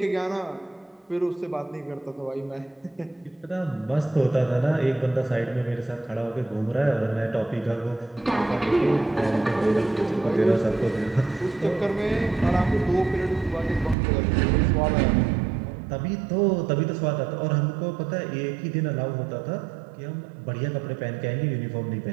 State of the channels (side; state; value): left; drops out; at 14.0 s